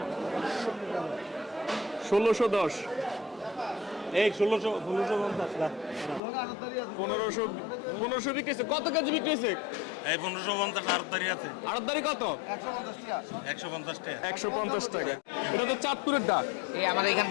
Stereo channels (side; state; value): right; drops out; at 6.2 s